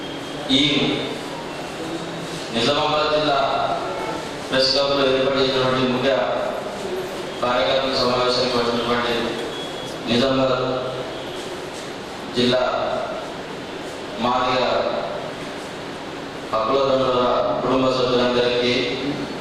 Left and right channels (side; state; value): both; identical; correlation 1.00